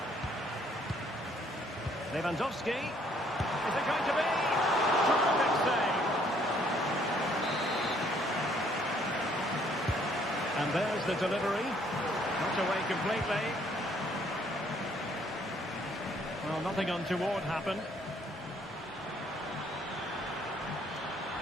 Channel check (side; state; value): both; normal; correlation 0.64